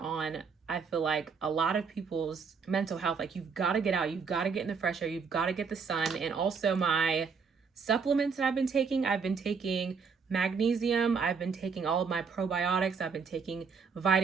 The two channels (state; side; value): quieter; left; 5.6 dB